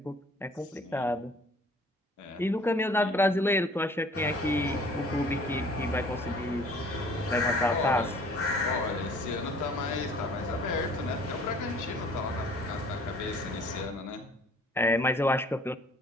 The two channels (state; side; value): normal; both; correlation 0.54